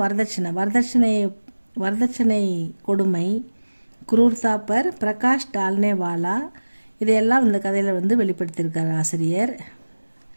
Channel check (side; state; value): both; inverted; correlation -1.00